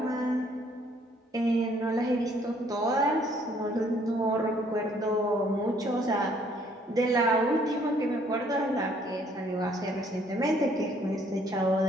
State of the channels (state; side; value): normal; both; correlation 0.63